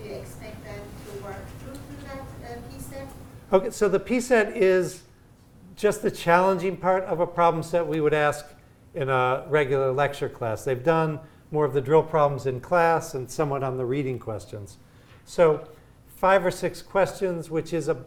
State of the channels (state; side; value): identical; both; correlation 1.00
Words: do you expect them to work through that P set? Okay, so the P set is just the challenging part of a problem set we would ask in a regular lecture class. They've done more of the drill problems in class and somewhat on the reading questions. So 5 or 6 questions, which is